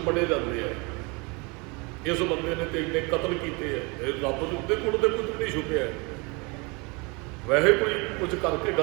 ਬੜੇ ਜਾਂਦੇ ਆ। ਇਸ ਬੰਦੇ ਨੇ ਤੇ ਇੰਨੇ ਕਤਲ ਕੀਤੇ ਹੈ, ਰੱਬ ਦੇ ਉੱਤੇ ਕੋਲ ਤੇ ਕੁਝ ਨਹੀਂ ਛੁਪਿਆ। ਵੈਸੇ ਕੋਈ ਕੁਝ ਕਰਕੇ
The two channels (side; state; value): left; quieter; 28.8 dB